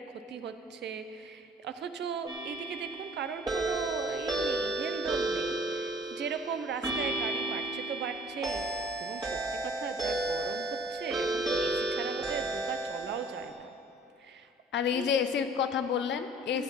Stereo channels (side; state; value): both; normal; correlation 0.51